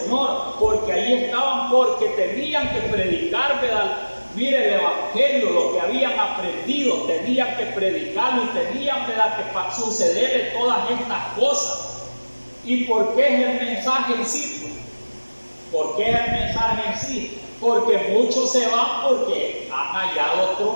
porque ahí estaban, porque tenían que predicar, ¿verdad?, mire, el evangelio, lo que habían aprendido, tenían que predicarlo y tenían, ¿verdad?, que sucederle todas estas cosas. ¿Y por qué es el mensaje en sí? ¿Por qué es el mensaje en sí? Porque muchos se van porque han hallado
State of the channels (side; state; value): both; inverted; correlation -1.00